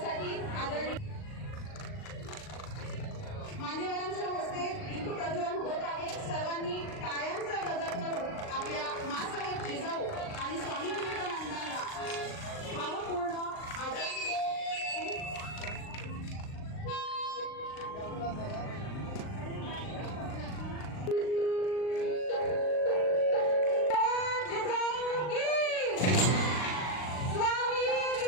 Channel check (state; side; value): late; right; 39 ms